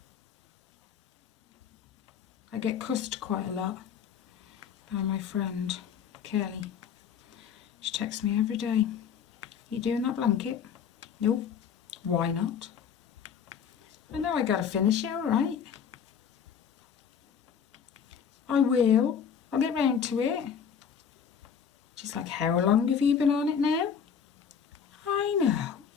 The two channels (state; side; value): quieter; right; 7.4 dB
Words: I get cussed quite a lot by my friend Kelly. She texts me every day. You doing that blanket? Nope. Why not? I know I gotta finish it, alright. I will. I'll get round to it. Just like, how long have you been on it now? I know.